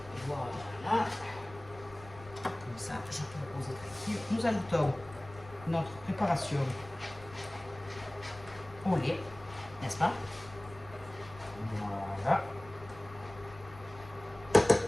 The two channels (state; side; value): noise; left; rumble, 19 dB below the sound